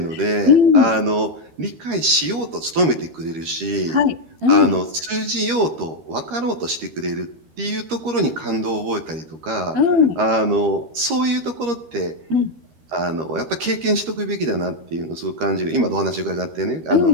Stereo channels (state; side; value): late; left; 13 ms